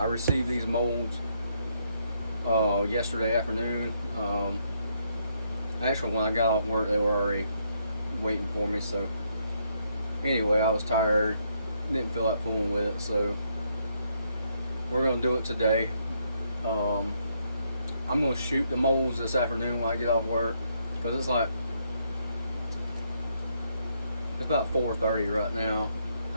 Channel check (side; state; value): both; inverted; correlation -0.74